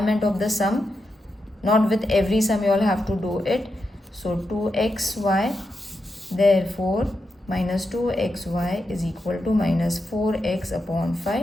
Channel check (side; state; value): both; normal; correlation 0.86